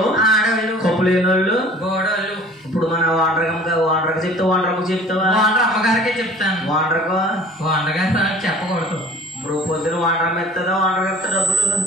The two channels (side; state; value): both; normal; correlation 0.47